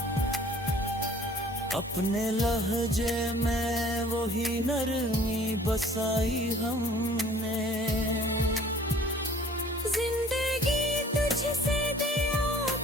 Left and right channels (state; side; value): normal; both; correlation 0.52